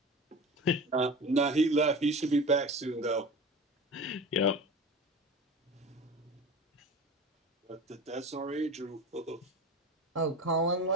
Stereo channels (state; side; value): normal; both; correlation 0.33